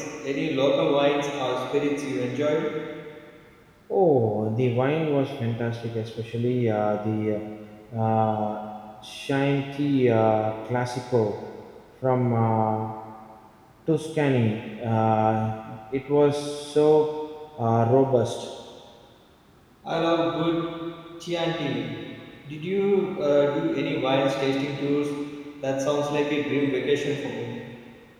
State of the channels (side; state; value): both; identical; correlation 1.00